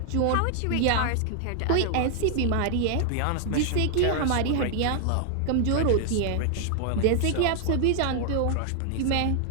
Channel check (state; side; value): different; both; correlation 0.00